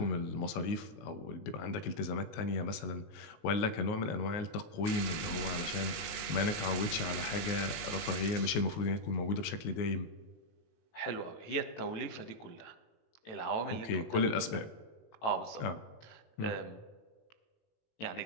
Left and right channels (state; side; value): late; right; 19 ms